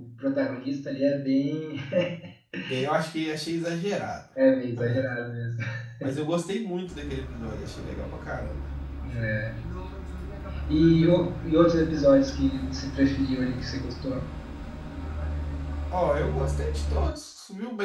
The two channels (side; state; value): both; identical; correlation 1.00